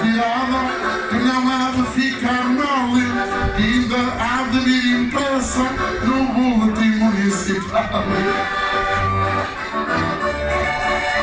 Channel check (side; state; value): both; identical; correlation 1.00